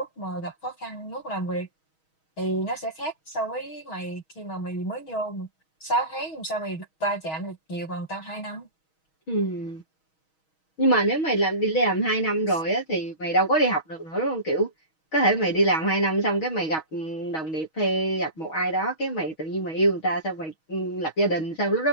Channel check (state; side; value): late; right; 6.3 ms